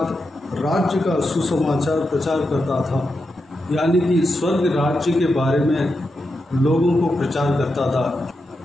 राज्य का सुसमाचार प्रचार करता था, यानी कि स्वर्ग राज्य के बारे में लोगों को प्रचार करता था,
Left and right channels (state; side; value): normal; both; correlation 0.87